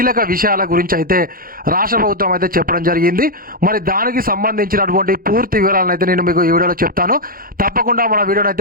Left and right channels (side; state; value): left; late; 0.42 ms